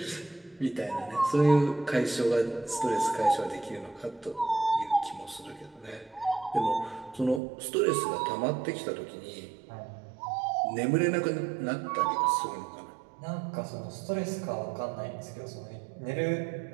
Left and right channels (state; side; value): drops out; left; at 7.4 s